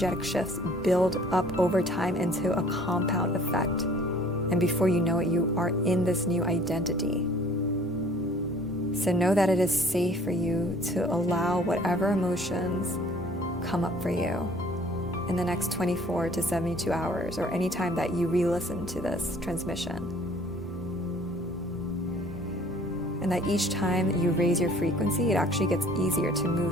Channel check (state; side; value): normal; both; correlation 0.54